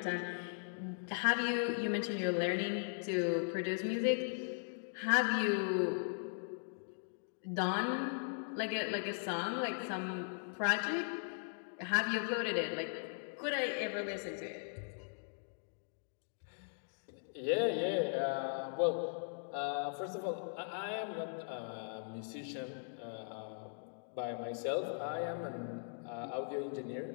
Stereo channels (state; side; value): silent; right; digital silence